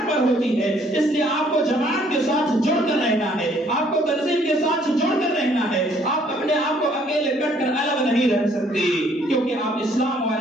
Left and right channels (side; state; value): both; normal; correlation 0.63